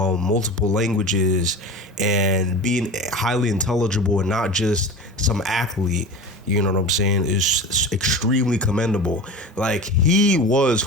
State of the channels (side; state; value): both; normal; correlation 0.32